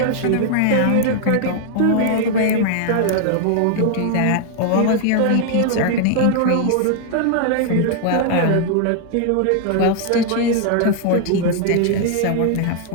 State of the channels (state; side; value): different; both; correlation 0.00